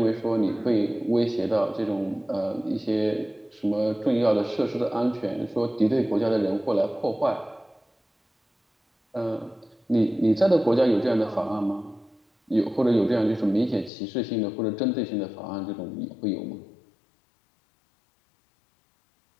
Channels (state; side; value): drops out; right; at 13.9 s